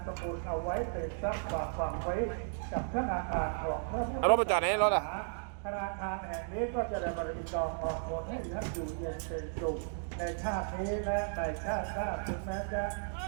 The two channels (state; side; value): silent; left; digital silence